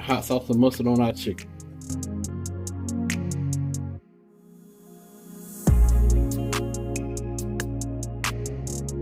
sauce and mustard on our chicken.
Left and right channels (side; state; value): both; identical; correlation 1.00